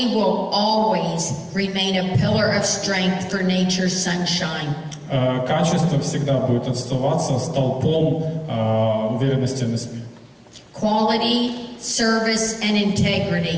will always remain a pillar of strength for Nature's Sunshine. Качество всегда будет оставаться столпом уверенности NSP. Quality, service, and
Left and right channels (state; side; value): identical; both; correlation 1.00